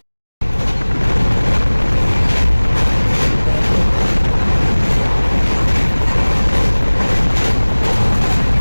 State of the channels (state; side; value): inverted; both; correlation -1.00